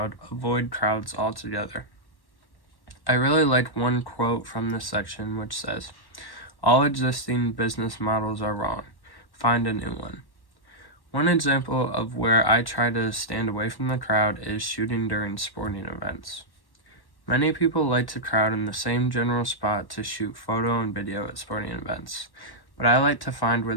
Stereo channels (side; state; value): right; late; 1.1 ms